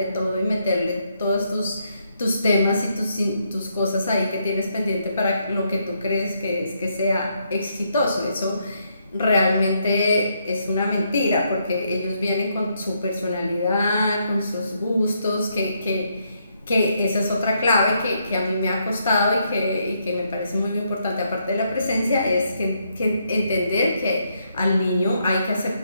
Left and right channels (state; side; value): inverted; both; correlation -0.76